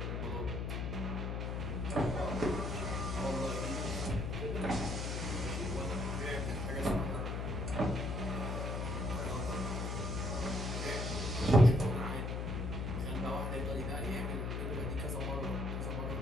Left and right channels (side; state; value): left; noise; hum, 1 dB below the sound